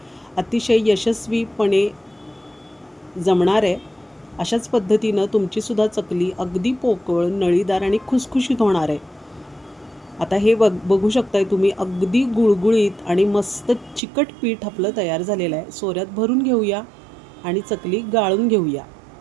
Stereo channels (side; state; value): left; drops out; at 14.0 s